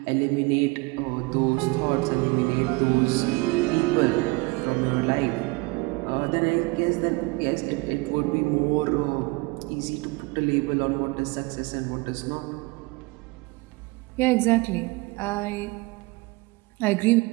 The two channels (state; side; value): quieter; left; 25.1 dB